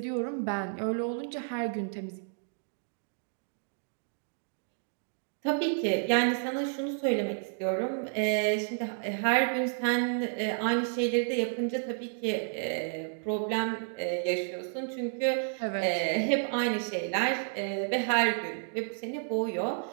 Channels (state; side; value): silent; left; digital silence